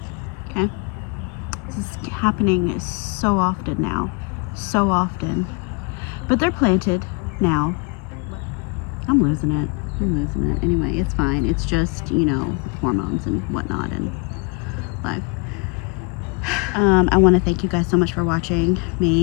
This is happening so often now. So often. But they're planted now. I'm losing it. Anyway, it's fine. It's just, you know, hormones and whatnot and life. I want to thank you guys so much for watching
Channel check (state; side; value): quieter; right; 29.6 dB